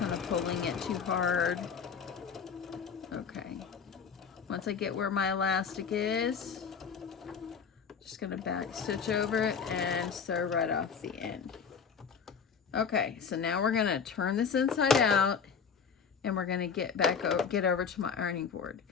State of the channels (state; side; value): quieter; right; 6.4 dB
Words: of pulling it too hard. Okay, once I get where my elastic is, just gonna back stitch over it and sew right off the end. Okay, so now we're gonna turn this inside out, and we're gonna get over to my ironing board.